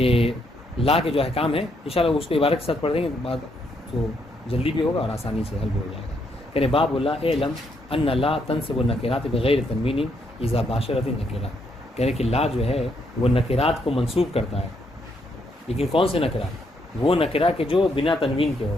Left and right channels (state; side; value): normal; both; correlation 0.75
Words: لا کے جو احکام ہیں انشاءاللہ اس کو عبارت کے ساتھ پڑھ دیں گے، بعد تو جلدی بھی ہوگا اور آسانی سے حل بھی ہو جائے گا. کہنے باب اللہ علم ان لا تنصب النکرات بغیر تنوین اذا باشرت النکرہ. کہنے کہ لا جو ہے وہ نکرات کو منصوب کرتا ہے، لیکن کون سے نکرہ؟ وہ نکرہ کہ جو بنا تنوین کے ہو،